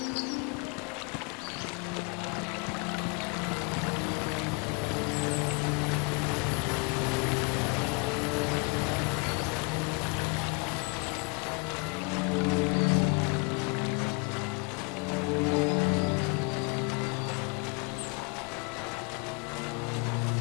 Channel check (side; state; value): right; quieter; 31.4 dB